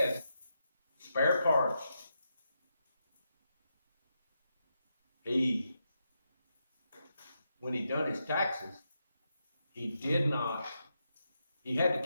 spare parts. When he done his taxes, he did not. He had to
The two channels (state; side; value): inverted; both; correlation -0.84